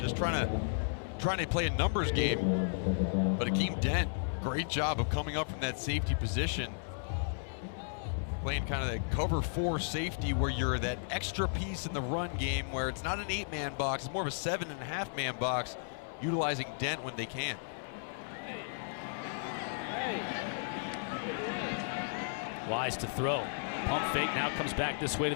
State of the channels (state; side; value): silent; right; 55 dB below the other